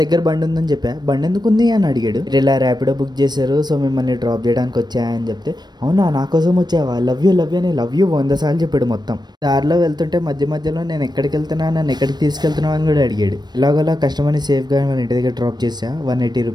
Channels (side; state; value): left; late; 0.20 ms